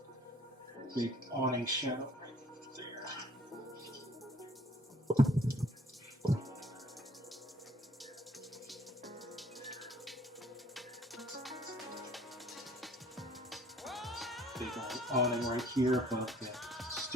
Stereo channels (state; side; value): normal; both; correlation 0.58